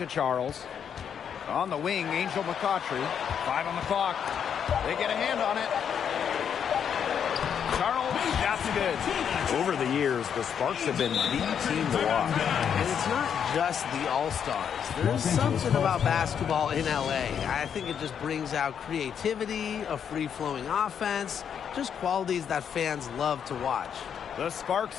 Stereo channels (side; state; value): right; quieter; 8.0 dB